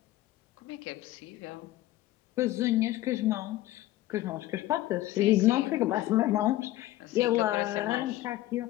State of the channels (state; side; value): quieter; right; 15.8 dB